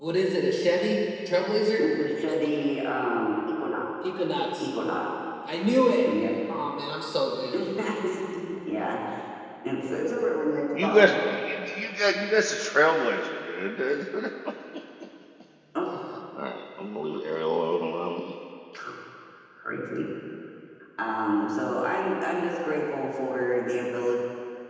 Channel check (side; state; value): both; identical; correlation 1.00